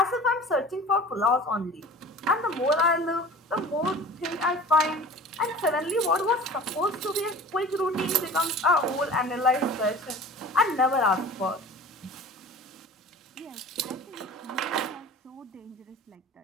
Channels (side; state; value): both; normal; correlation 0.40